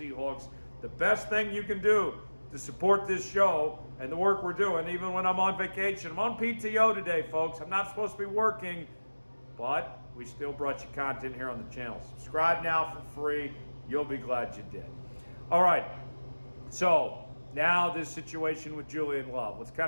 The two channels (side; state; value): both; inverted; correlation -1.00